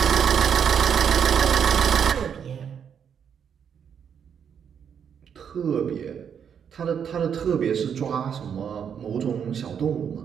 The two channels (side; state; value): left; quieter; 7.8 dB